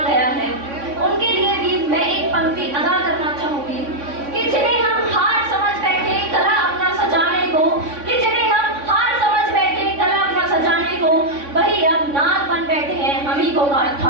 गया है, उनके लिए भी मैं एक पंक्ति अदा करना चाहूंगी कि जिन्हें हम हार समझ बैठे गला अपना सजाने को, वही अब नाग बन बैठे हैं हम ही को काट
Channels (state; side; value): late; left; 3.6 ms